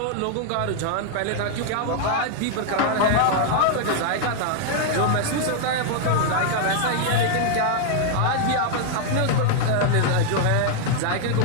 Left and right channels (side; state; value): both; different; correlation 0.00